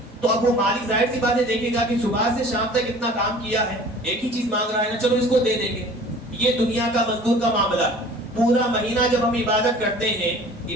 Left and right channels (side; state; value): both; normal; correlation 0.46